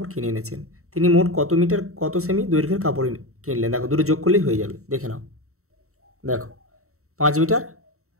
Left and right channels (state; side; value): late; left; 0.64 ms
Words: কিনে এনেছেন। তিনি মোট কত মিটার কত সেমি দৈর্ঘ্যের কাপড় কিনলেন, দেখো দুটো যোগ করলেই হয়ে যাবে, দেখে নাও। দেখো 5 মিটার